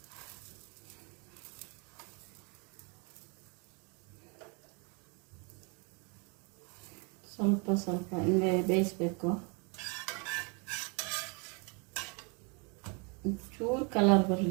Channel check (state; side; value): quieter; left; 33.1 dB